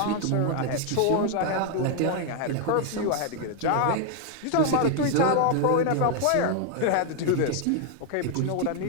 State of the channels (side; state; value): both; different; correlation 0.00